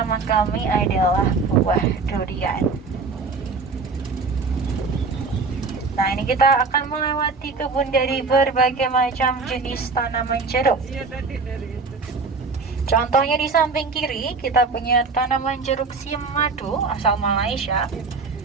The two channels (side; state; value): left; quieter; 4.3 dB